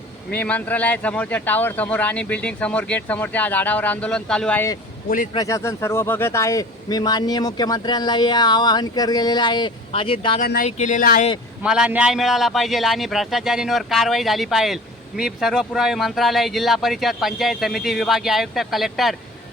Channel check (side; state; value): both; normal; correlation 0.42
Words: मी मंत्रालयासमोरच्या टावर समोर आणि बिल्डिंग समोर गेट समोरच्या झाडावर आंदोलन चालू आहे। पोलीस प्रशासन सर्व बघत आहे। मी माननीय मुख्यमंत्र्यांनाही आवाहन केलेलं आहे, अजित दादांनाही केलेलं आहे। मला न्याय मिळाला पाहिजे आणि भ्रष्टाचारींवर कारवाई झाली पाहिजे। मी सर्व पुरावे मंत्रालय, जिल्हा परिषद, पंचायत समिती, विभागीय आयुक्त, कलेक्टर,